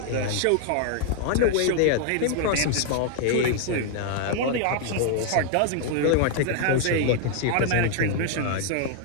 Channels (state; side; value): different; both; correlation 0.00